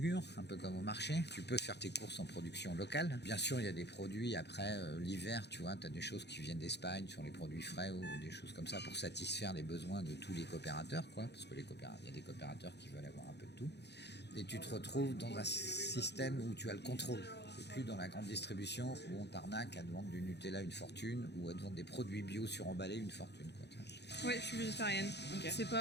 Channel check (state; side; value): late; right; 0.49 ms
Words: un peu comme au marché. Tu peux faire tes courses en production locale. Bien sûr, il y a des produits après l'hiver, tu vois, tu as des choses qui viennent d'Espagne sur les produits frais ou des choses comme ça pour satisfaire les besoins de tous les coopérateurs, quoi, parce que il y a des coopérateurs qui veulent avoir un peu de tout. Et tu te retrouves dans un système où tu as le contrôle. C'est plus dans la grande distribution où on t'arnaque à te vendre du Nutella une fortune ou à te vendre des produits bio suremballés une fortune, quoi. Oui, je suis végétarienne. Ok.